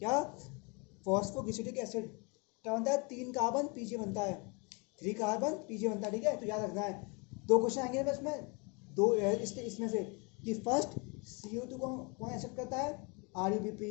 फॉस्फोग्लिसरिक एसिड, क्या बनता है, 3 कार्बन PGA बनता है, 3 कार्बन PGA बनता है, ठीक है, तो याद रखना है। 2 क्वेश्चन आएंगे बस में, दो इसमें से कि फर्स्ट CO2 को कौन एक्सेप्ट करता है, RUBP,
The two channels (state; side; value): quieter; right; 31.1 dB